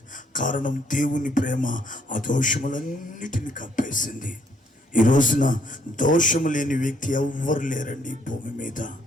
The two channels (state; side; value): normal; both; correlation 0.68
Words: కారణం దేవుని ప్రేమ ఆ దోషములన్నిటిని కప్పేసింది. ఈ రోజున దోషము లేని వ్యక్తి ఎవ్వరు లేరండి ఈ భూమి మీద.